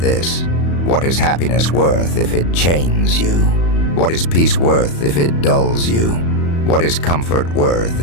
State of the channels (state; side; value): late; right; 35 ms